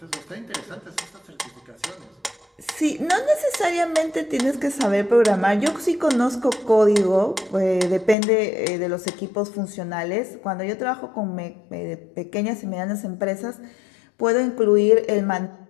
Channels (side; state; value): right; drops out; at 8.2 s